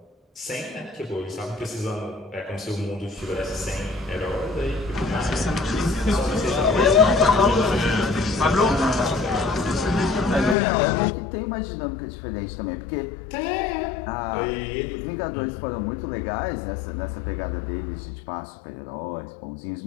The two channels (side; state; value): right; drops out; at 10.6 s